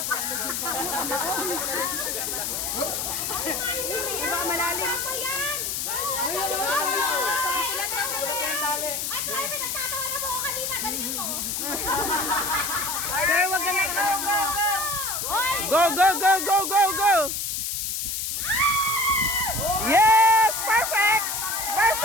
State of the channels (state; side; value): noise; left; hiss, 2 dB below the sound